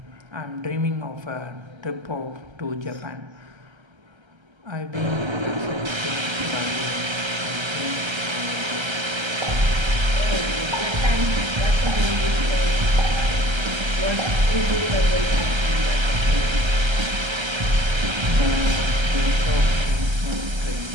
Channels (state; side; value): late; left; 1.3 ms